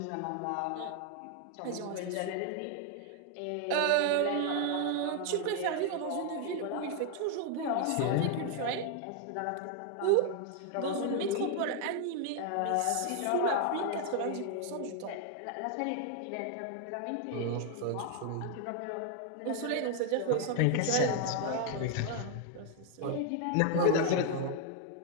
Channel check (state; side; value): different; both; correlation 0.00